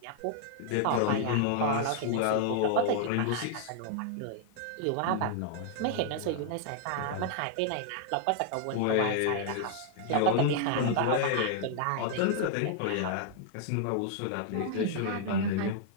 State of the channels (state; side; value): different; both; correlation 0.00